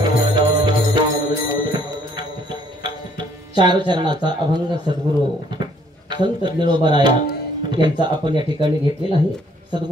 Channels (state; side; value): normal; both; correlation 0.64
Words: चार चरणाचा अभंग सद्गुरू संत ज्ञानोबाराया यांचा आपण या ठिकाणी घेतलेला आहे.